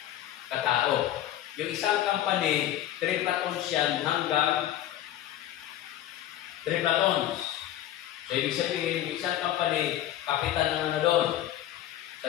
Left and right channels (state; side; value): quieter; right; 12.5 dB